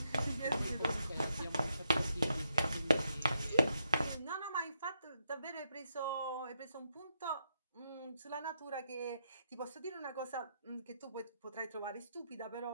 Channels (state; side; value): inverted; both; correlation -0.81